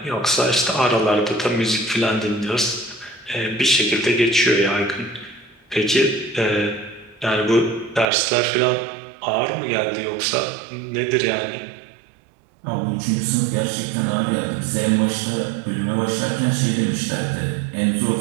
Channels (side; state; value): left; drops out; at 8.1 s